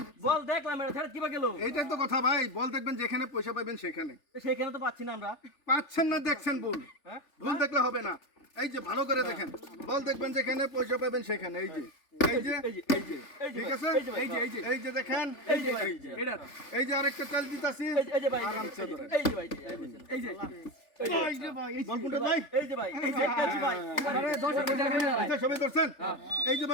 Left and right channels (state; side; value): late; right; 3.4 ms